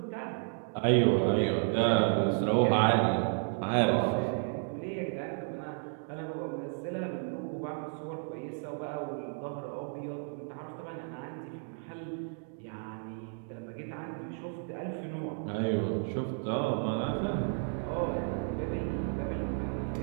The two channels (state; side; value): silent; left; 56 dB below the other